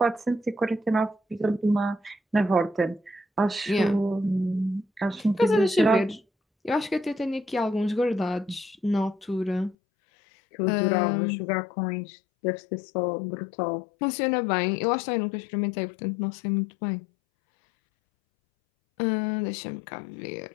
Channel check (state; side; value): drops out; right; at 9.8 s